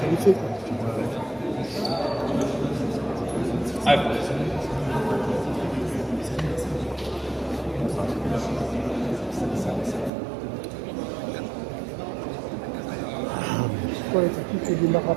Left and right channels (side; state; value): left; drops out; at 10.1 s